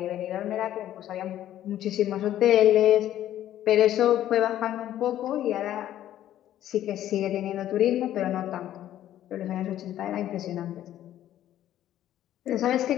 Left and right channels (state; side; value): quieter; right; 12.3 dB